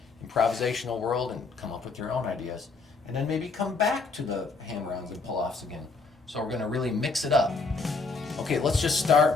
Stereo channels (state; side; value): quieter; right; 4.2 dB